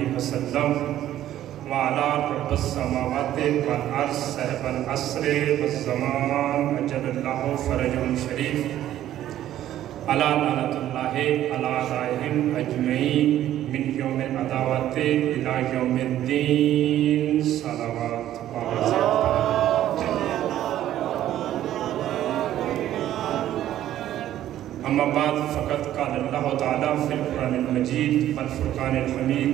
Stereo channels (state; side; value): quieter; left; 12.5 dB